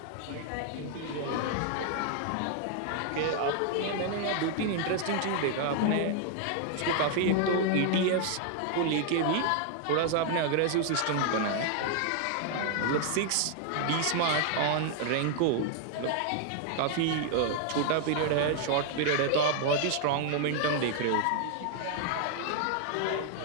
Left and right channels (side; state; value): both; different; correlation 0.00